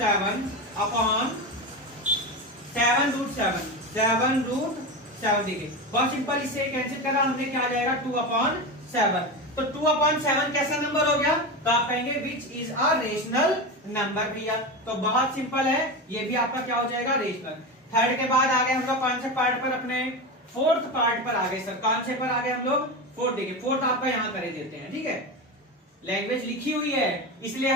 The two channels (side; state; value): both; normal; correlation 0.21